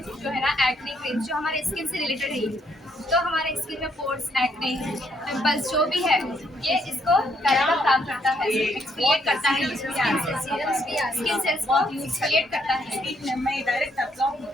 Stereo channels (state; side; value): normal; both; correlation 0.72